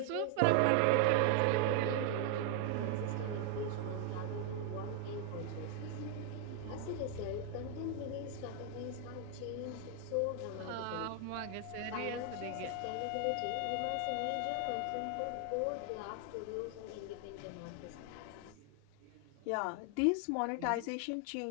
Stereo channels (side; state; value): both; different; correlation 0.00